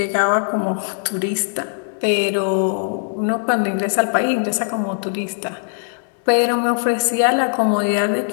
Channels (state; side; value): silent; right; 66 dB below the other